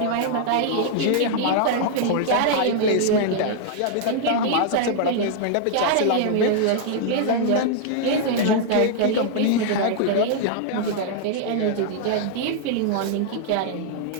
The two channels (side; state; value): both; different; correlation -0.01